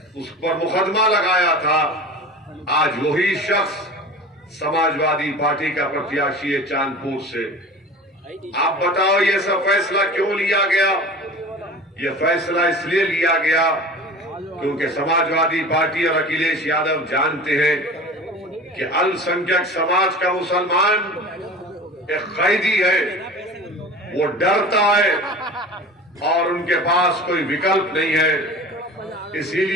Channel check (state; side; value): normal; both; correlation 0.36